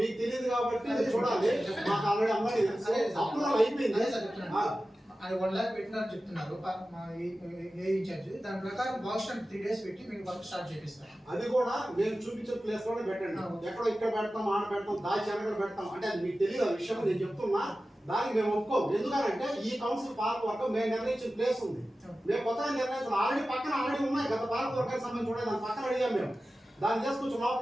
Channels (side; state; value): both; normal; correlation 0.95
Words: తెలియదు కాబట్టి చూడాలి. మాకు ఆల్రెడీ అమ్మాయి అప్రూవల్ అయిపోయింది. అది 1 lakh పెట్టినారని చెప్తున్నారు మా ఏ ఇన్ఛార్జ్. దాని ప్రకారం బాక్స్ 3 days పెట్టి మీకు వర్క్ స్టార్ట్ చేపిస్తాం. అది కూడా మేము చూపించే ప్లేస్ లోనే పెట్టండి. ఎక్కడో ఇక్కడ పెడతాం, ఆడ పెడతాం, దాచి అనగడ పెడతాం అంటే అది మీకు తెలియదు. ఆ విషయం నేను చెప్తున్నా, దానికి మేము ఒప్పుకోం. ఎందుకంటే ఈ కౌన్సిల్ పార్క్ వరకు మేము నిర్ణయించిన ప్లేస్ ఉంది, మేము కొత్తగా నిర్ణయించాం. ఆల్రెడీ ఉన్నాయి గత పార్క్ వర్గానికి సంబంధించి ఉన్నాయి. దాని పక్కన అడిగాం మేము, దాన్ని చేసుకొచ్చి